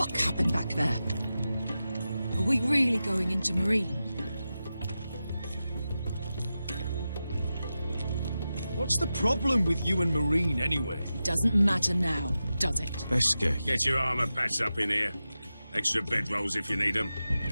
happened back there? Are we really going into Marine? What's the problem with you and Marine, anyway? It doesn't matter now, does it? Beske. Get your armor patched up in here. Extra bedrolls if you need them.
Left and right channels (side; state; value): both; inverted; correlation -0.92